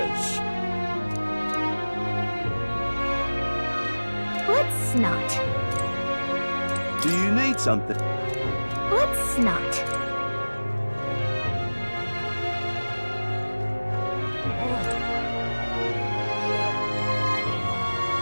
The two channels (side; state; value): both; inverted; correlation -1.00